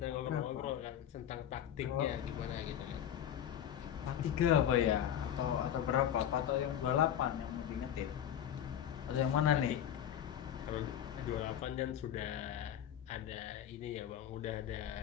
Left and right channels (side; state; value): right; quieter; 10.2 dB